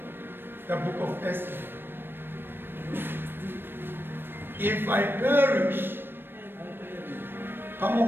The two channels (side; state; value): left; late; 0.098 ms